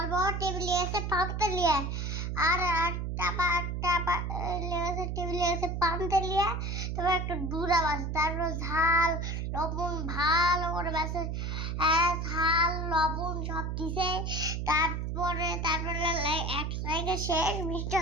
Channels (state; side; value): noise; right; hum, 3 dB below the sound